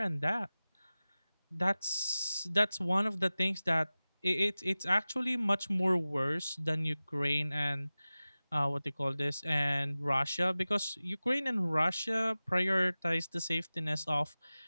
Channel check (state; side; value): inverted; both; correlation -0.97